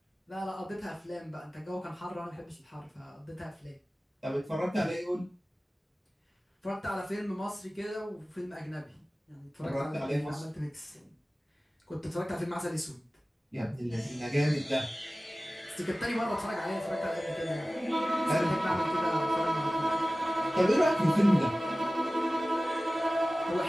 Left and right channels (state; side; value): normal; both; correlation 0.97